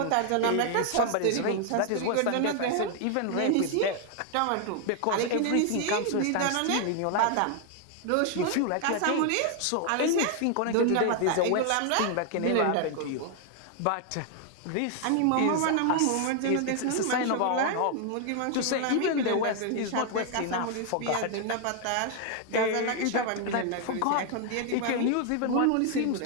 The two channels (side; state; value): both; different; correlation 0.00